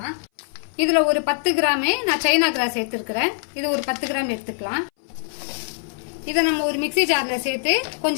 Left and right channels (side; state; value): right; silent; 59 dB below the other